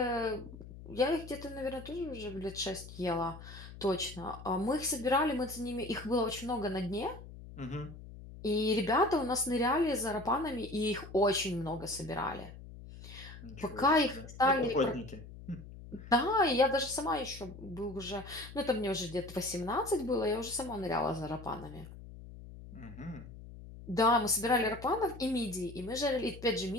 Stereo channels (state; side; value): noise; left; hum, 15 dB below the sound